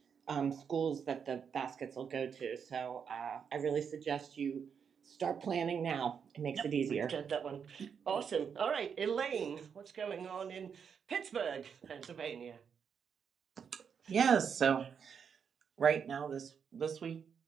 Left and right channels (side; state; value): left; quieter; 7.0 dB